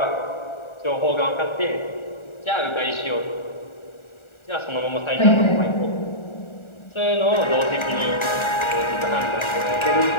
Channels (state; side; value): late; right; 1.4 ms